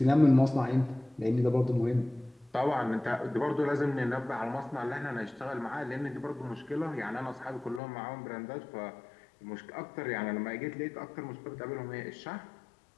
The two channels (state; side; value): drops out; right; at 7.8 s